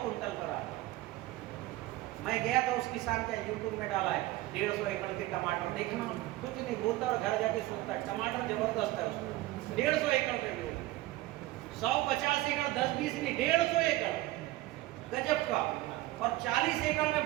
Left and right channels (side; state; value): left; quieter; 17.6 dB